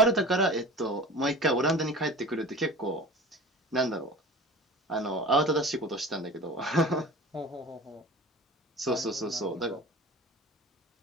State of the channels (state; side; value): normal; both; correlation 0.37